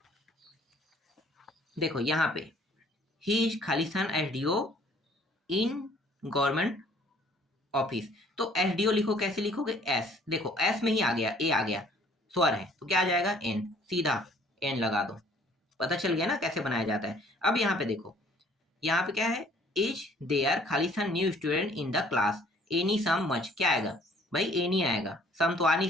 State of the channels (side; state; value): both; normal; correlation 0.57